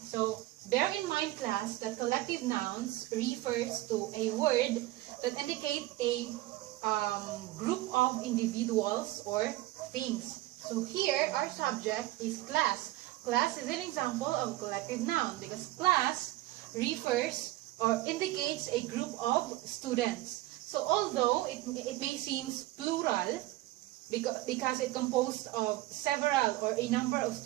So, bear in mind, class, that collective nouns refers to a word that indicate a group of individuals or things. So here, our subject is class. Class is an example of collective noun because class refers or indicates a group of students. So although it may seem plural because it composed of several or a number of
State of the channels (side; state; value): left; quieter; 17.2 dB